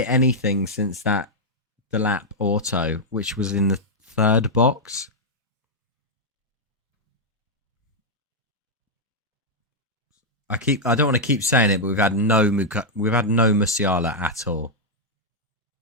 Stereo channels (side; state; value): both; normal; correlation -0.04